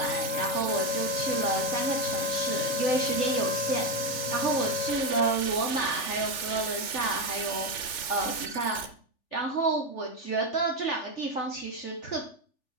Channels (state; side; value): late; right; 3.4 ms